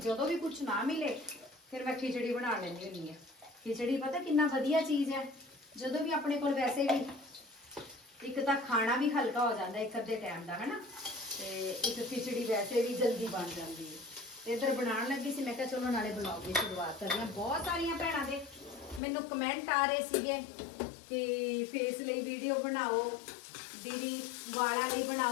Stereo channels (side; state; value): right; drops out; at 19.0 s